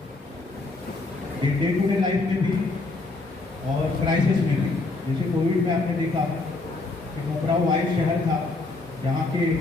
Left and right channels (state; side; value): quieter; right; 3.4 dB